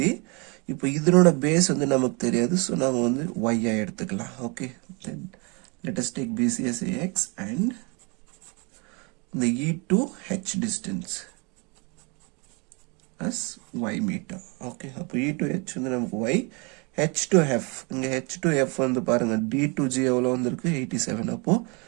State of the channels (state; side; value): quieter; left; 30.9 dB